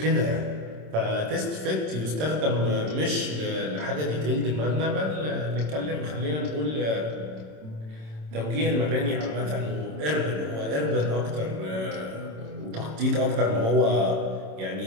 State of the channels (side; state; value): left; late; 27 ms